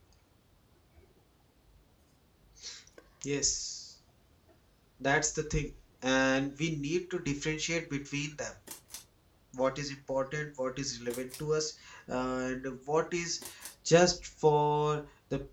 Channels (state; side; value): identical; both; correlation 1.00